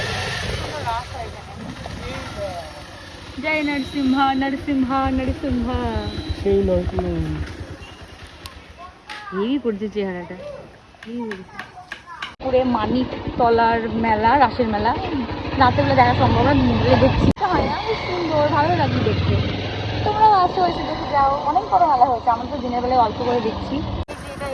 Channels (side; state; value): both; identical; correlation 1.00